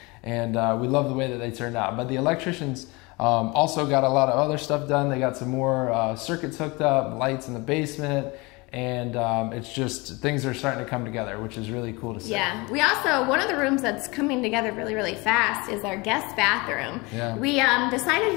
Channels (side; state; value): right; quieter; 25.5 dB